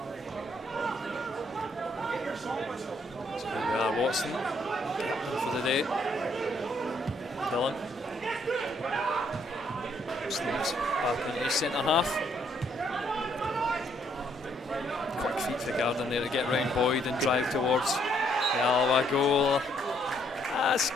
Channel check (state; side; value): normal; both; correlation 0.69